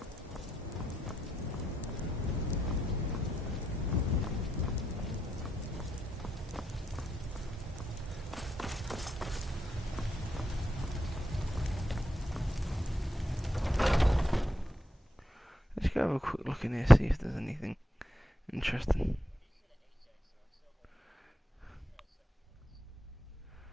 Let's go have a quick look in here, see if there's anything interesting.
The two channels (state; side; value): normal; both; correlation 0.82